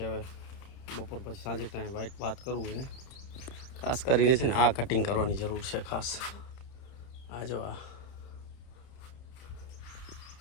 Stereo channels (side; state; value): right; late; 31 ms